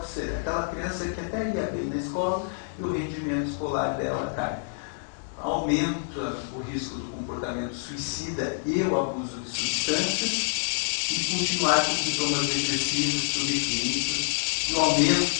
ser aquela criança que até ia bem na escola e o rendimento escolar dela cai. Aumenta o risco do comportamento suicida e o abuso de substâncias, e continuar com sintomas depressivos, subclínicos, e o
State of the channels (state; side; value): silent; right; 60 dB below the other